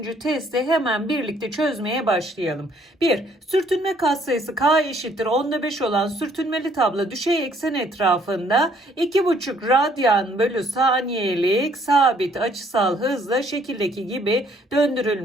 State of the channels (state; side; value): normal; both; correlation 0.64